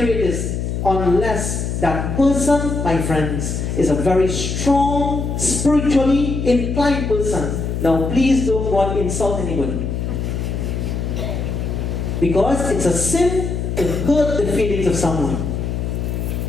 this, unless that person, my friends, is a very strong, spiritually inclined person. Now, please don't go and insult anybody. Because it's a sin to hurt the feelings of someone.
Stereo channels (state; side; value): noise; left; hum, 2 dB below the sound